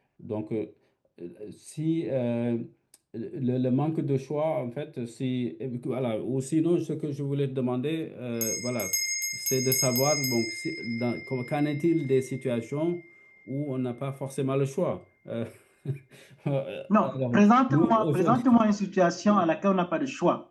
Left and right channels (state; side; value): identical; both; correlation 1.00